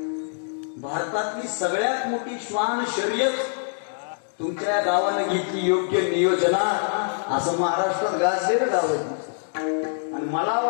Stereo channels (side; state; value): right; silent; digital silence